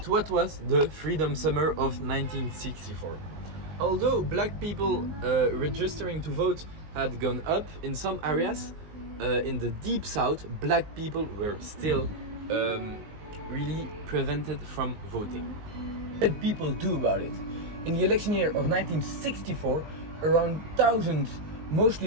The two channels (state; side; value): late; left; 19 ms